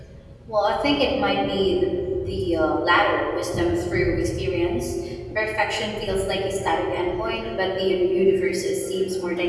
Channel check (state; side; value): identical; both; correlation 1.00